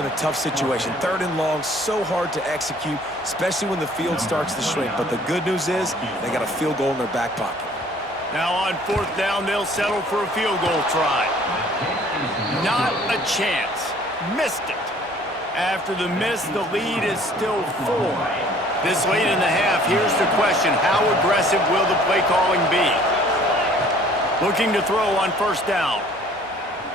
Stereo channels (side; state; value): both; normal; correlation 0.55